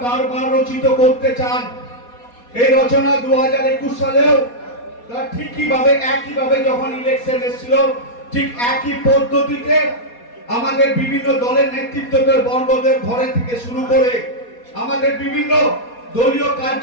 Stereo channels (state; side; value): late; right; 4.2 ms